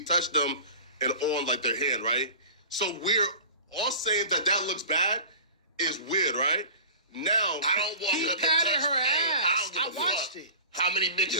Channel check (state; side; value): inverted; both; correlation -0.37